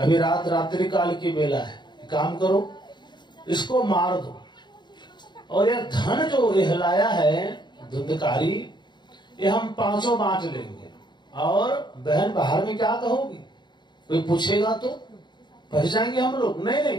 रात्रि काल की बेला है, काम करो, इसको मार दो। और यह धन जो यह लाया है धुंधकारी, ये हम पांचों बांट लेंगे। और बहन बाहर में क्या कहोगी, कोई पूछेगा तो फंस जाएंगे हम लोग। नहीं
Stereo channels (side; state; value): right; late; 0.22 ms